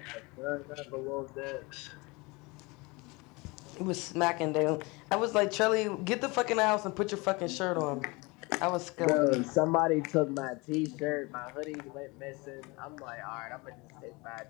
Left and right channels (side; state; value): right; quieter; 25.8 dB